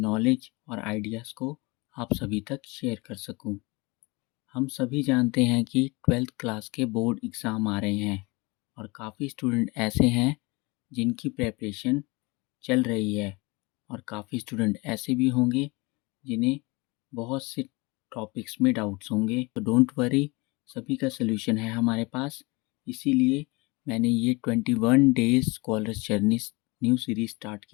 और आइडियाज़ को आप सभी तक शेयर कर सकूं। हम सभी जानते हैं कि 12th क्लास के बोर्ड एग्ज़ाम आ रहे हैं और काफ़ी स्टूडेंट ऐसे हैं जिनकी प्रिपरेशन चल रही है और काफ़ी स्टूडेंट ऐसे भी होंगे जिन्हें बहुत से टॉपिक्स में डाउट्स होंगे। तो डोंट वरी, सभी का सलूशन है हमारे पास। इसीलिए मैंने ये 21 days scholars journey new series start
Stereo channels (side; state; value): right; quieter; 25.4 dB